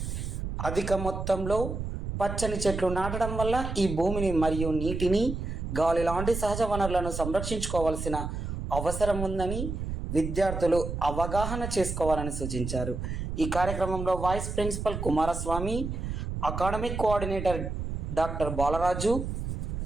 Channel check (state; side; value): noise; right; rumble, 4 dB below the sound